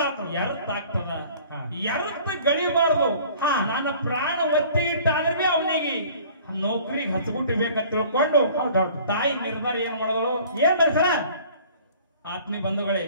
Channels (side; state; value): both; inverted; correlation -0.49